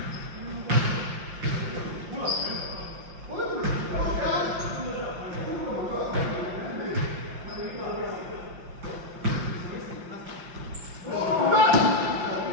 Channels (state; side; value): late; left; 5.7 ms